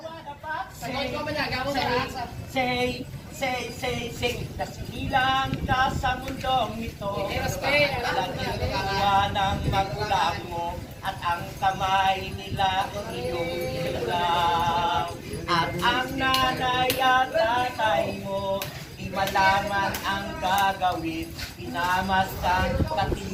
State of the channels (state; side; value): identical; both; correlation 1.00